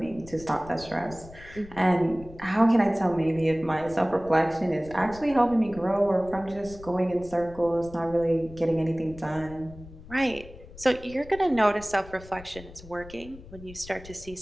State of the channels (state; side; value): noise; left; rumble, 18 dB below the sound